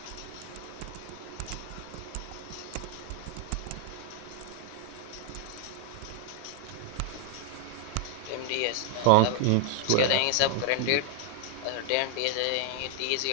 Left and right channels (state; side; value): different; both; correlation 0.00